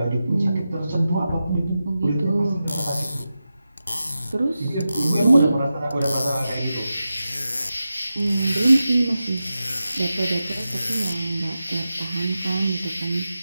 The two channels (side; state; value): both; inverted; correlation -0.92